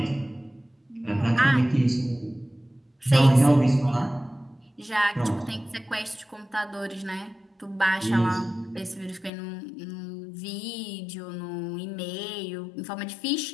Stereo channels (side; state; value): right; drops out; at 9.3 s